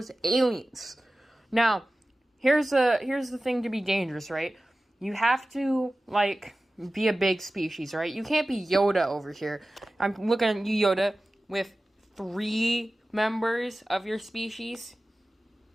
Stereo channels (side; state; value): both; normal; correlation 0.96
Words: aliens. Now, here's the thing to be dangerous, right? You have to be a big species, right? You can't be Yoda over here. I'm looking at you, Yoda, with 3 members of your species.